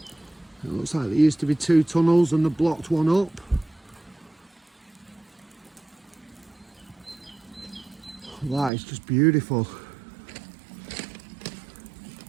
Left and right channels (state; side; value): drops out; left; at 8.7 s